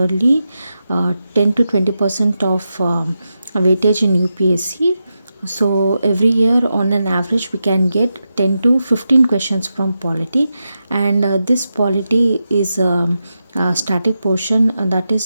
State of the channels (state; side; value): inverted; both; correlation -0.89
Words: 10 to 20% of weightage in UPSC. So every year on an average we can get 10 to 15 questions from polity, and this polity is static portion. That